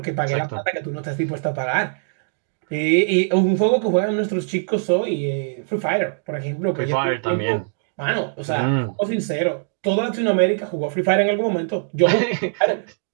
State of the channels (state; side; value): silent; left; digital silence